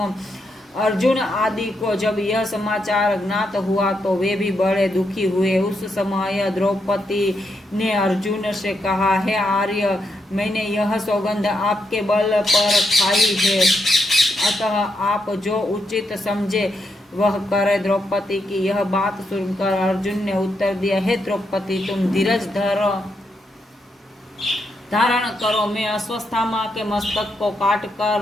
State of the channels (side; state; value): both; normal; correlation 0.81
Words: अर्जुन आदि को जब यह समाचार ज्ञात हुआ तो वे भी बड़े दुखी हुए। उस समय द्रौपदी ने अर्जुन से कहा, हे आर्य, मैंने यह सौगंध आपके बल पर खाई है, अतः आप जो उचित समझे वह करे। द्रौपदी की यह बात सुनकर अर्जुन ने उत्तर दिया, हे द्रौपदी, तुम धीरज धारण करो, मैं अश्वत्थामा के मस्तक को काट